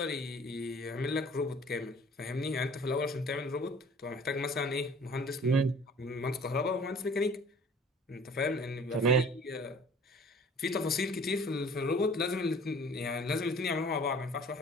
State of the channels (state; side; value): normal; both; correlation 0.50